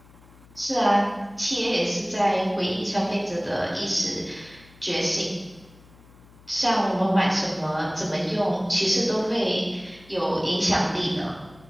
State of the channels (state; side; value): noise; left; hum, 25 dB below the sound